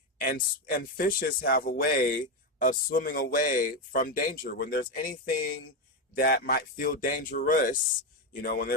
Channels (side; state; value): both; normal; correlation 0.09